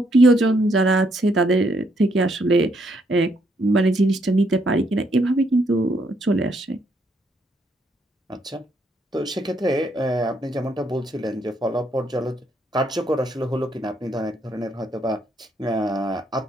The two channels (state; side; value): normal; both; correlation 0.73